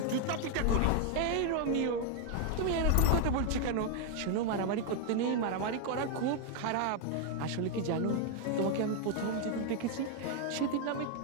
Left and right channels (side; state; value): both; different; correlation 0.00